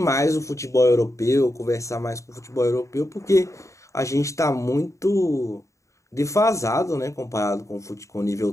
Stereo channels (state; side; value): late; right; 0.15 ms